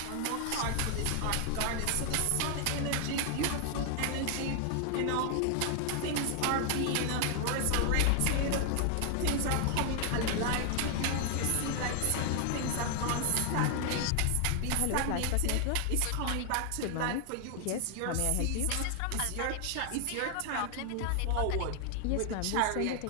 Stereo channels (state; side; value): different; both; correlation 0.00